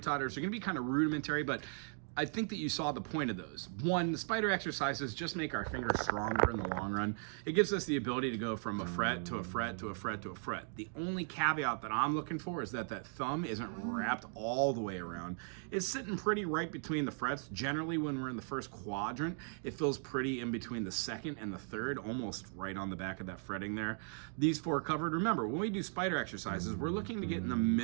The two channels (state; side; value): silent; left; 53 dB below the other